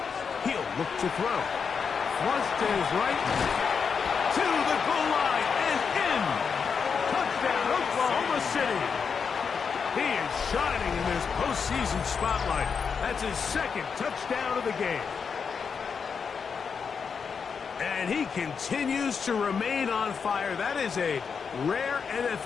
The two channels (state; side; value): quieter; right; 6.0 dB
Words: Look to throw. Flush to his right. To the goal line and in. Touchdown, Oklahoma City. He is shining in this postseason spotlight. That's his second touchdown of the game. And he continues to remain on fire. That is a rare